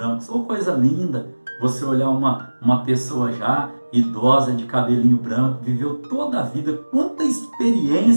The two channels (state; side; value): inverted; both; correlation -1.00